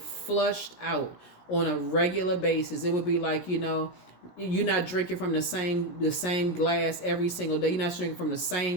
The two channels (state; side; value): late; right; 17 ms